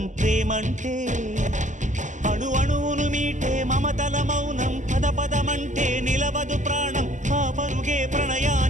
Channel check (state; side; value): late; left; 0.36 ms